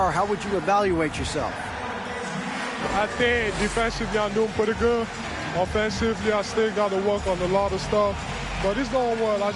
how would you evaluate yourself? I think defensively I'm doing pretty good. Offensively, I still got to work on a lot of stuff. But it's going well. I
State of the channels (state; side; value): identical; both; correlation 1.00